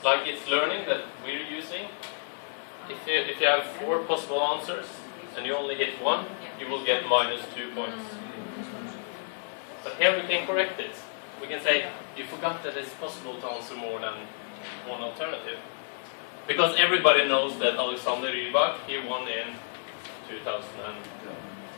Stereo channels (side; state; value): right; silent; 58 dB below the other